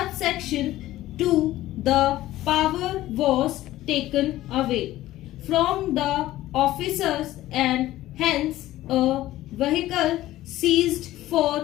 2, the power was taken away from the officers and hence a vehicle seized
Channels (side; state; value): right; quieter; 15.4 dB